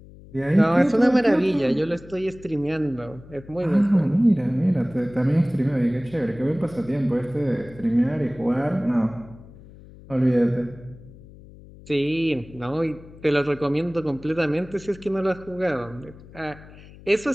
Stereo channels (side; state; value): left; noise; hum, 20 dB below the sound